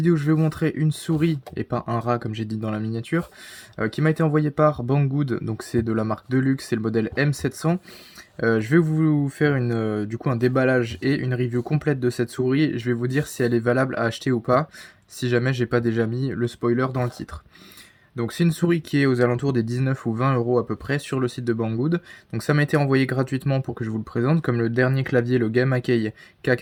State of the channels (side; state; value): both; identical; correlation 1.00